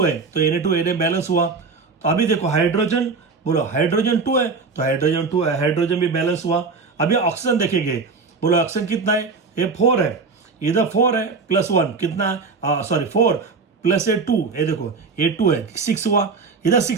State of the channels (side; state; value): left; quieter; 4.6 dB